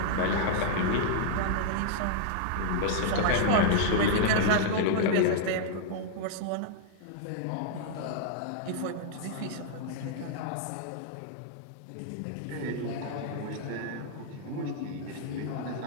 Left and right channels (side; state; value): both; different; correlation -0.01